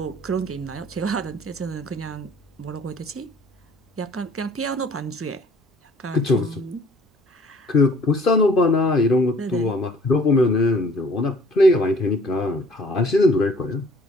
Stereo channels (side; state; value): both; normal; correlation 0.55